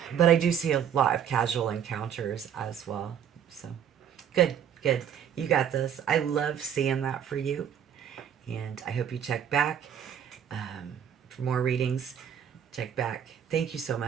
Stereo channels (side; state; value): left; quieter; 8.8 dB